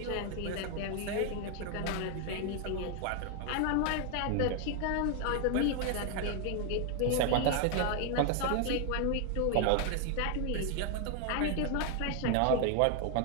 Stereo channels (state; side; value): different; both; correlation 0.00